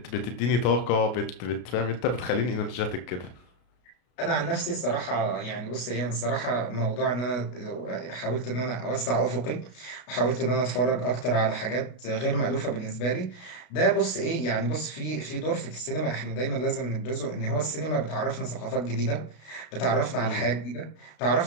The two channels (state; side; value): late; right; 33 ms